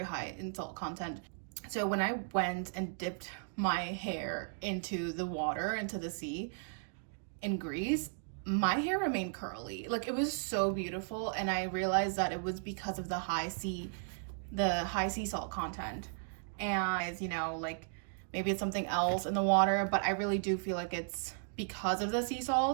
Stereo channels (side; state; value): left; silent; digital silence